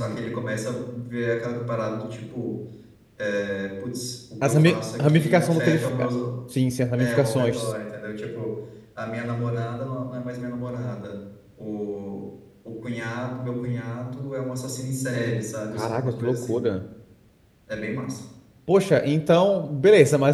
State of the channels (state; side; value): identical; both; correlation 1.00